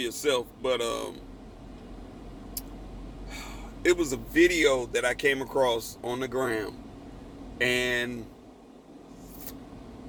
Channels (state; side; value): identical; both; correlation 1.00